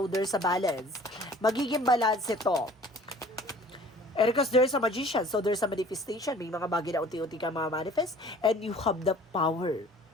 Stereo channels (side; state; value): both; normal; correlation 0.50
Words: there's a balance. Magiging balance ito. And because there's a Magician, so there's a manifestation. May mga bagay na unti-unti ka manifest and you have the power.